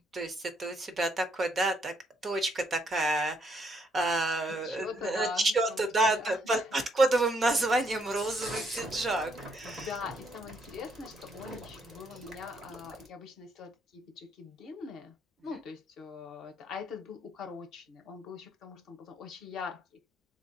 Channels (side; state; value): both; normal; correlation 0.72